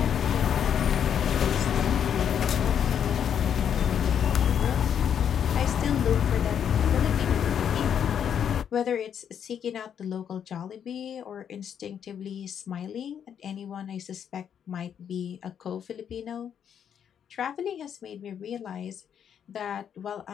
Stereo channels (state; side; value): quieter; right; 8.5 dB